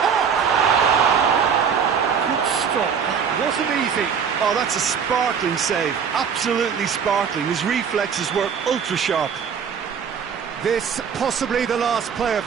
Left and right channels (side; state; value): left; quieter; 7.0 dB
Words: Good stop. That wasn't easy. Oh, that's a sparkling save. Absolutely sparkling. His reflexes were ultra sharp. This possibly the last play of